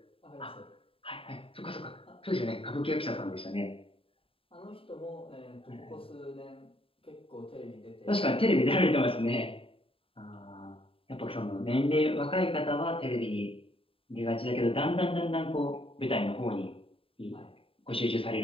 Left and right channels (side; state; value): right; late; 0.27 ms